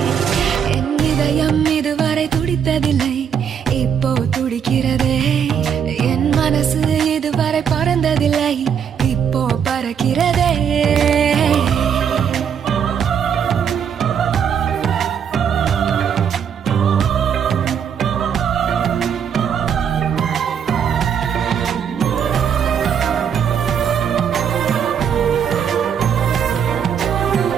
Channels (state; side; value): quieter; left; 7.8 dB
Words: என் இதயம் இதுவரை துடித்ததில்லை இப்போ துடிக்கிறதே என் மனசு இதுவரை பறந்ததில்லை இப்போ பறக்கிறதே